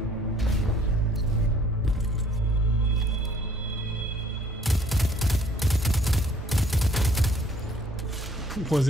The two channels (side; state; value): both; normal; correlation 0.59